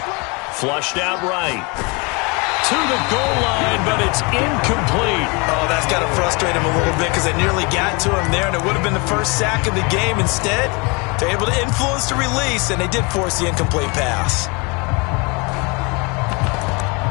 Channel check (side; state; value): right; quieter; 29.5 dB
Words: Flushed out right. To the goal line, but it's incomplete. Oh, that's got to frustrate him a little bit because they nearly got to him there, and it would have been the first sack of the game. Instead, they're able to influence the release, and they did force the incomplete pass.